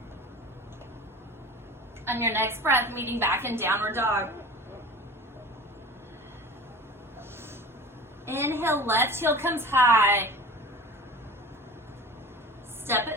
On your next breath, meeting back in downward dog. Inhale, left heel comes high. Step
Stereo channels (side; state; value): both; normal; correlation 0.37